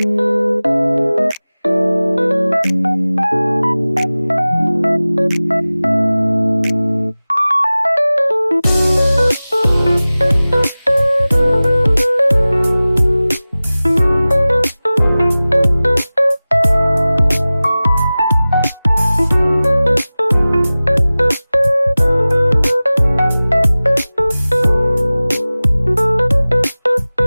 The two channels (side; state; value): both; inverted; correlation -0.98